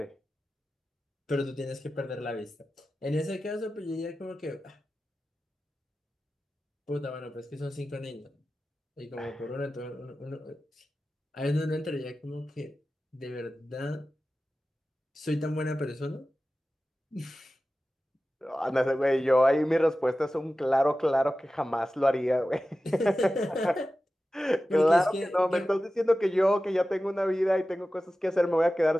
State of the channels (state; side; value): normal; both; correlation 0.95